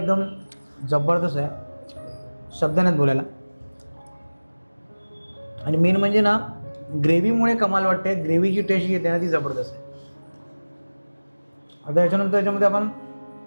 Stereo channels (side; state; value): both; inverted; correlation -1.00